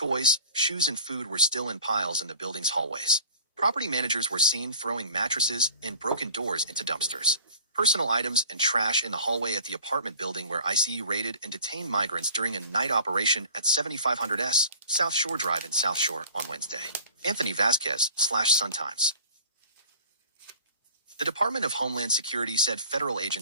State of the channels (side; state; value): both; inverted; correlation -0.44